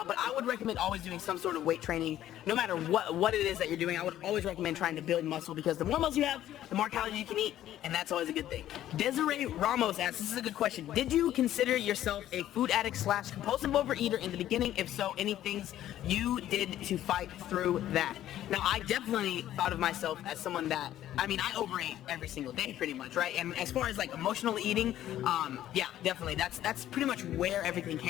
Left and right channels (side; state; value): right; quieter; 12.6 dB